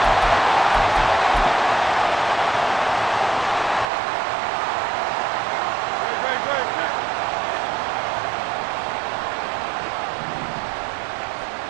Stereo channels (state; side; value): drops out; left; at 3.9 s